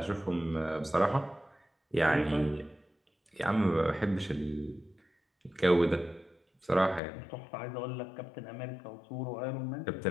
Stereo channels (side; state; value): right; drops out; at 7.0 s